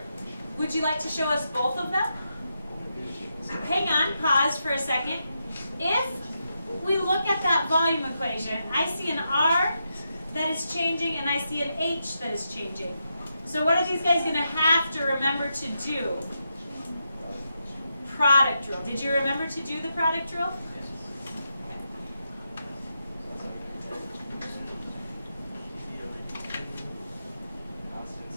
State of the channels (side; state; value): both; inverted; correlation -0.85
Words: Would you like to show us both of them? Hang on, pause for a second. If we look at that volume equation, I see an R that is changing and I see an H that is changing. So what are these guys going to have to remember to do? Product rule. Did you remember to do the product rule?